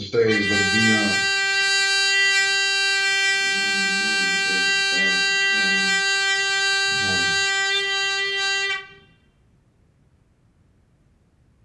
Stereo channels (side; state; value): both; identical; correlation 1.00